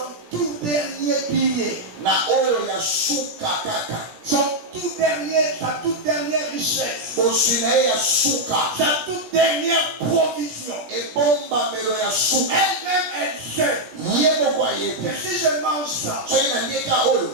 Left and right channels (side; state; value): left; late; 17 ms